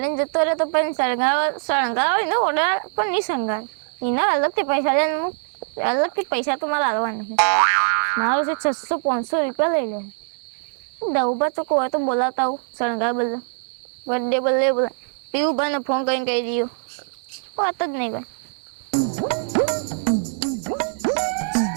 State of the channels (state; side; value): silent; left; digital silence